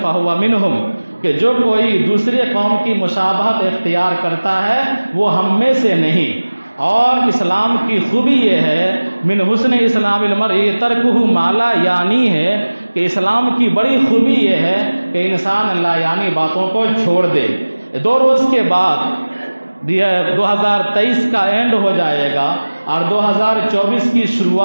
فہو منہم، کہ جو کوئی دوسرے قوم کی مشابہت اختیار کرتا ہے وہ ہم میں سے نہیں۔ اور اسلام کی خوبی یہ ہے من حسن اسلام المرء ترکہ ما لا یعنی ہے، کہ اسلام کی بڑی خوبی یہ ہے کہ انسان لا یعنی باتوں کو چھوڑ دے۔ 2 روز کے بعد 2023 کا اینڈ ہو جائے گا اور 2024 کی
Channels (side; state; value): both; inverted; correlation -1.00